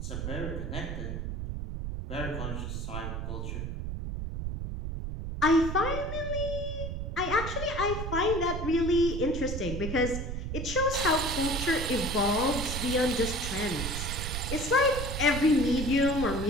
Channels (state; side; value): noise; right; rumble, 4 dB below the sound